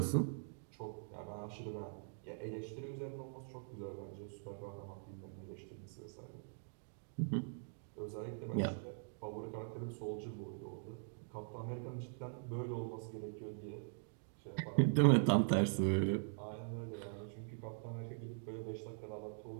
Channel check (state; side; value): silent; left; digital silence